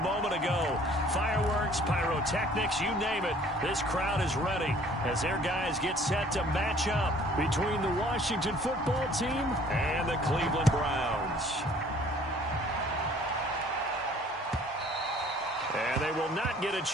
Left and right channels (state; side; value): normal; both; correlation 0.54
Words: ago. Fireworks, pyrotechnics, you name it. This crowd is ready as their guys get set to match up between the Washington football team and the Cleveland Browns. And they will not get a